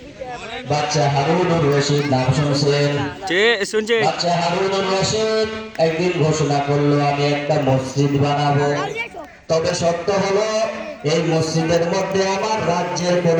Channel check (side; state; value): both; identical; correlation 1.00